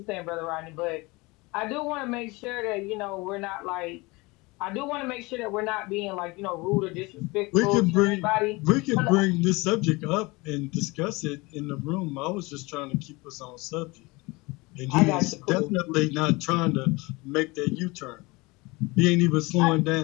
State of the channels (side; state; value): right; quieter; 24.3 dB